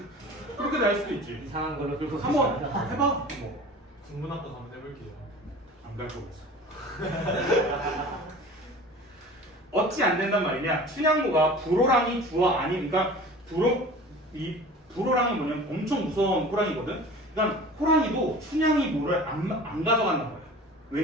그렇게 날 수도 있지. 이상한 거를 끌고 한번 가시나요? 해봐. 뭐. 국문학과 한번 해볼게요. 안 갈 거겠어. 어찌 안 된단 말이냐? 춘향고가 불호랑이 주어 아니, 그러니까 불호랑이 뭐냐면 엄청 무서운 호랑이거든. 그러니까 호랑이도 춘향이 뭐를 안 가져간단 말이야.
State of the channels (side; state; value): both; normal; correlation 0.41